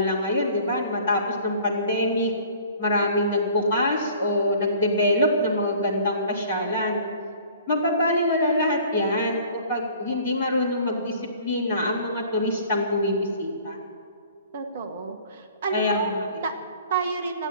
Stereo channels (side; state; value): both; inverted; correlation -0.50